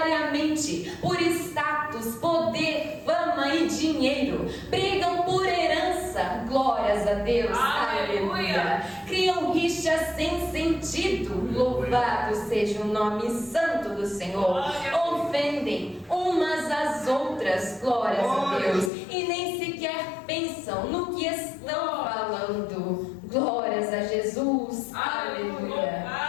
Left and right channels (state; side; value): drops out; right; at 18.9 s